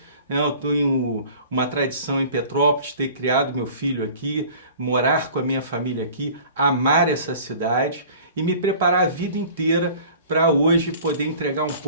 né? Eu tenho uma tradição em Petrópolis, ter criado meu filho aqui, morar com a minha família aqui, amar essa cidade e me preparar a vida inteira para hoje poder entregar um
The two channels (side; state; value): both; inverted; correlation -0.45